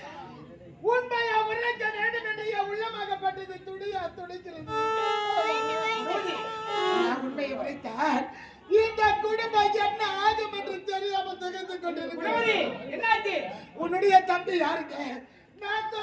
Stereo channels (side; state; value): both; identical; correlation 1.00